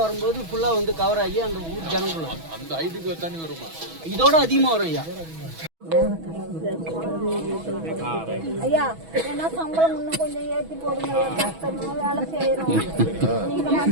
வரும்போது ஃபுல்லாக வந்து கவர் ஆகி அந்த ஊர் ஜனங்களும் அந்த ஹைட்டுக்கு தண்ணி வருமா? இதோட அதிகமாக வரும் ஐயா. ஐயா ஏன்னா சம்பளம் இன்னும் கொஞ்சம் ஏற்றி போடுங்க, கஷ்டமா வேலை செய்யறோம்.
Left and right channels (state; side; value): late; left; 6.1 ms